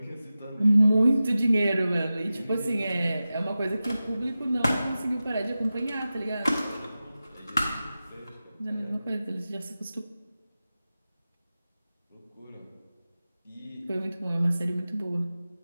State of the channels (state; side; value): inverted; both; correlation -0.95